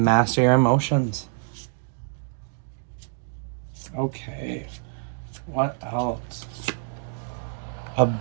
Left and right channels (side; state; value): left; silent; 59 dB below the other